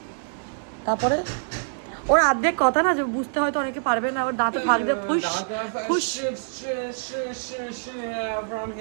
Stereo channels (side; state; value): left; silent; 62 dB below the other